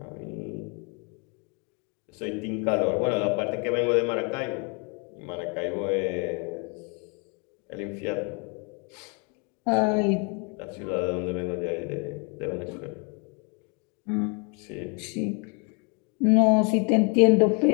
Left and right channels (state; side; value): quieter; right; 34.8 dB